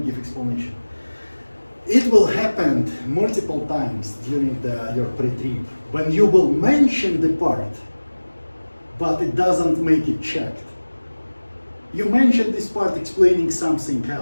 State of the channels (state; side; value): inverted; both; correlation -1.00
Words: give explanation. It will happen multiple times during your pre-trip when you will mention the part, but it doesn't make it checked. You mentioned this part explaining something